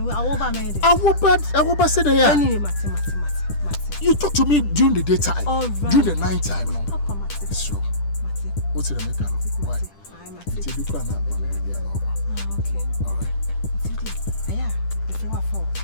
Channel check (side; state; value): right; late; 10 ms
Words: me dey awoba say there anyway mate you talk to me during the daytime during the night time no papa mate sure mate what's the make why mate you do na okay all right aya me friend wa for